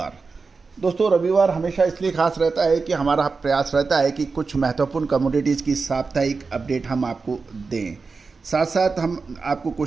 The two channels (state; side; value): quieter; left; 4.5 dB